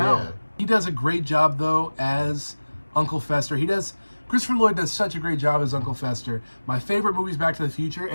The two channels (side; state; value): both; inverted; correlation -1.00